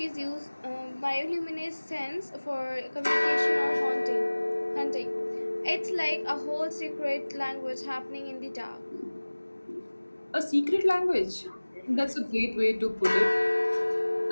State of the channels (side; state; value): both; inverted; correlation -1.00